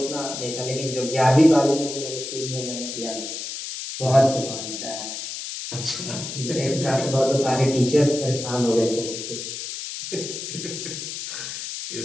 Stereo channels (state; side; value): noise; left; hiss, 7 dB below the sound